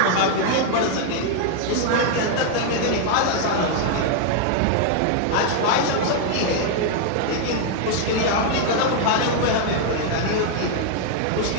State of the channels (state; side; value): different; both; correlation 0.00